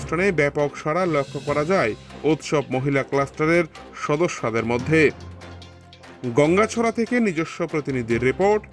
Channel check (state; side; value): identical; both; correlation 1.00